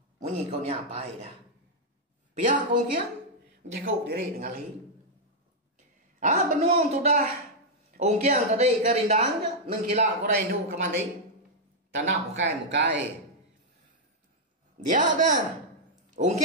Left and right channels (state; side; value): normal; both; correlation -0.04